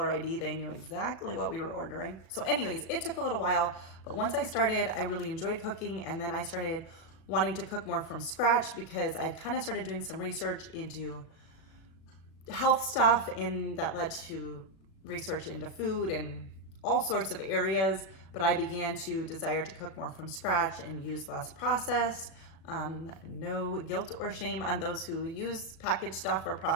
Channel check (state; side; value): late; right; 37 ms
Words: ID, they knew exactly what we were ordering. So anyways, it took a little while, but once I started, I really enjoyed cooking. And then I started wanting to cook more from scratch because I'd kind of started doing some research into health stuff, and that led to research into food and all sorts of areas. But I began to desire to cook more from scratch and use less processed. No guilt or shame on those who use packaged stuff or